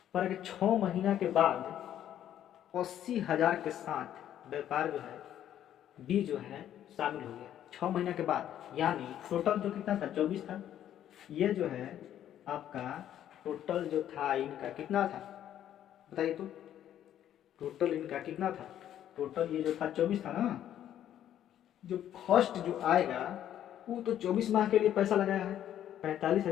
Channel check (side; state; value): right; quieter; 11.0 dB